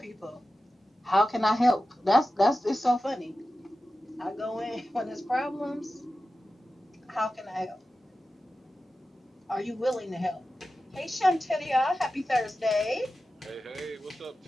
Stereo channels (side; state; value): both; normal; correlation 0.93